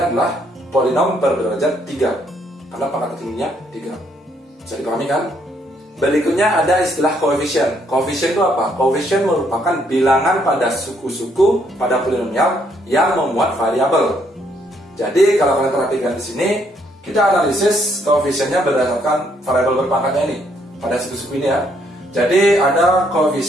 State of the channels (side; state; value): both; normal; correlation 0.70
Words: adalah polinom berderajat 3, karena pangkat tertingginya 3. Bisa dipahami kan? Berikutnya ada istilah koefisien. Koefisien itu apa? Koefisien merupakan bilangan pada suku-suku pada polinomial yang memuat variabel. Jadi kalau kalian perhatikan di sini, kita analisis koefisiennya berdasarkan variabel berpangkatnya ini. Pada suku-suku ini ya. Jadi ada